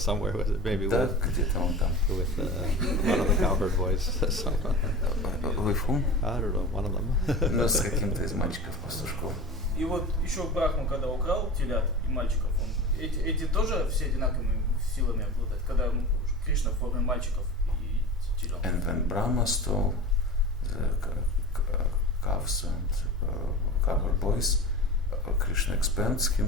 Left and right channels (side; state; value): both; normal; correlation 0.32